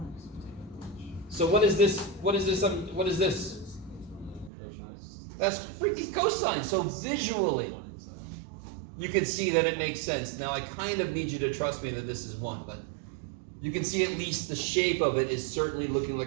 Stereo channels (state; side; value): drops out; left; at 4.5 s